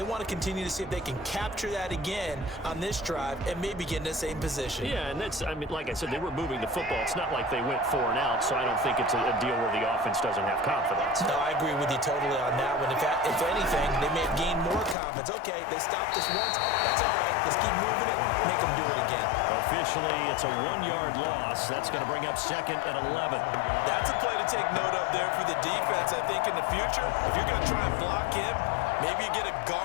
want to continue to see if they can capture that again on this drive and maybe get in the same position. Yeah, and that's, I mean, like I said, they were moving the football. It's not like they went 4 and out, so I don't think it's a deal where the offense doesn't have confidence. No, I agree with you totally on that one. If anything, they may have gained more confidence. Okay, they stopped us once. That's all right. Let's keep moving it. Make them do it again. Officially, it's a 1-yard loss. That's going to bring up 2nd and 11. That's a play to take note of there for the defense. I think in the future, if you're going to try and block him, maybe you get a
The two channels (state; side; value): drops out; right; at 15.0 s